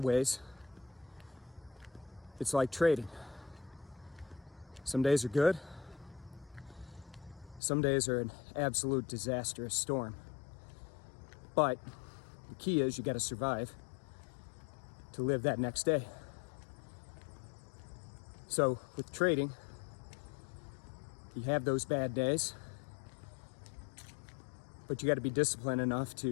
ways, it's like trading. Some days are good. Some days are an absolute disastrous storm. But the key is you got to survive to live that next day. So with trading, you have those bad days, but you got to be disciplined enough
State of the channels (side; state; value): right; drops out; at 7.6 s